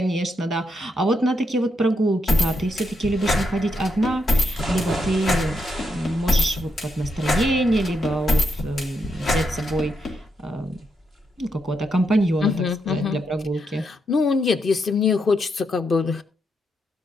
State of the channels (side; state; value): both; normal; correlation 0.81